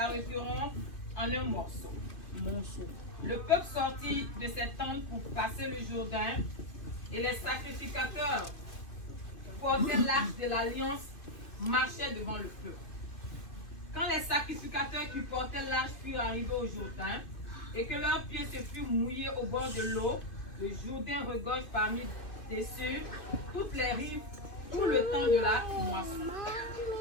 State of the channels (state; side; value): late; right; 2.5 ms